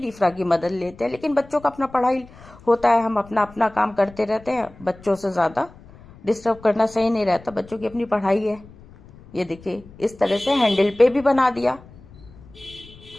इफ्रा की मदद लेते हैं, लेकिन बच्चों का अपना पढ़ाई होता है, हम अपना अपना काम करते रहते हैं। बच्चों से ज्यादा डिस्टर्ब करना सही नहीं रहता, बच्चों की अपनी पढ़ाई है। ये देखिए इस तरह से हैंडल पे भी बना दिया।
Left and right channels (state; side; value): noise; left; rumble, 22 dB below the sound